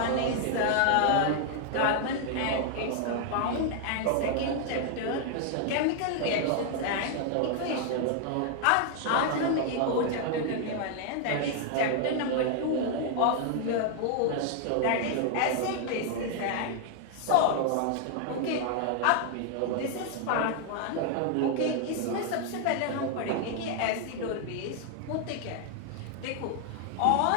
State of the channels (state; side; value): different; both; correlation 0.00